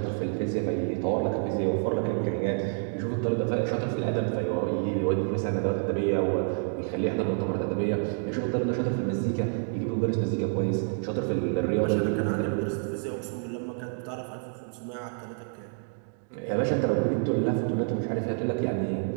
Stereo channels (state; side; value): silent; left; 59 dB below the other